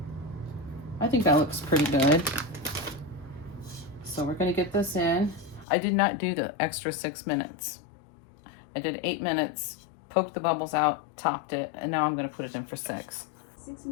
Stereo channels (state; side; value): drops out; right; at 5.7 s